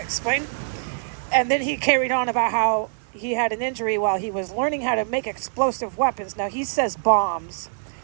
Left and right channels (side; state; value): left; silent; 59 dB below the other